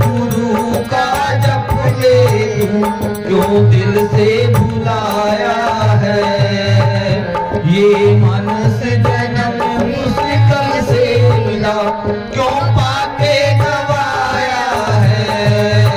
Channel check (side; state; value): both; identical; correlation 1.00